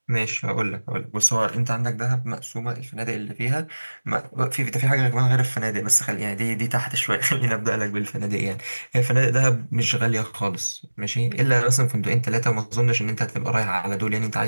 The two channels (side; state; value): both; inverted; correlation -1.00